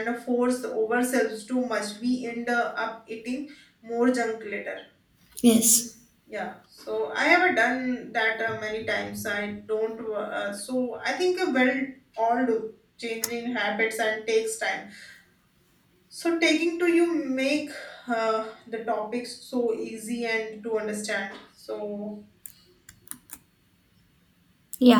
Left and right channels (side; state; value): both; identical; correlation 1.00